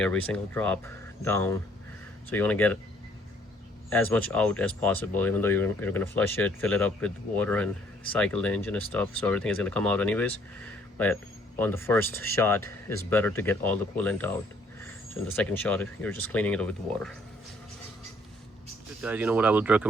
every single drop down. So you want to get as much out as possible, even though you're going to flush it, fill it up with water, and cycle the engine and stuff. So everything is going to come out anyways. But on the first shot, it's better to get all the coolant out. So in the second shot, you're just cleaning it with water. Good guys, what I would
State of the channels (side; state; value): both; normal; correlation 0.64